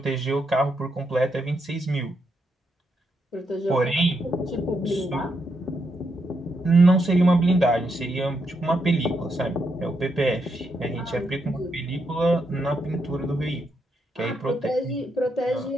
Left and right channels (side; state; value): both; normal; correlation 0.80